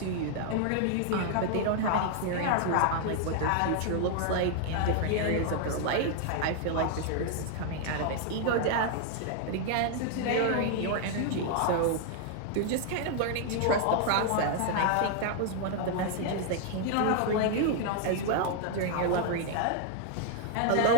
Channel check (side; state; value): both; different; correlation 0.00